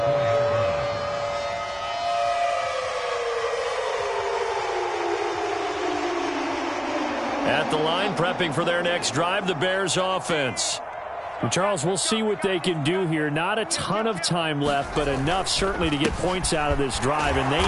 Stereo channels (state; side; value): identical; both; correlation 1.00